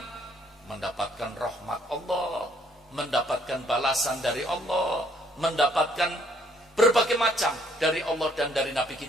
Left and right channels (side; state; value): both; normal; correlation 0.66